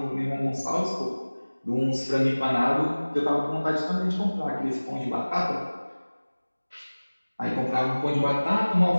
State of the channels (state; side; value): inverted; both; correlation -1.00